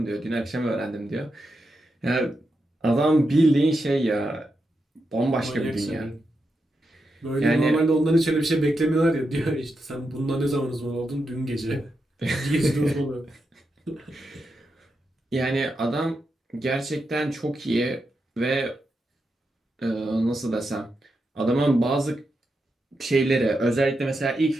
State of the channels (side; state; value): both; normal; correlation 0.86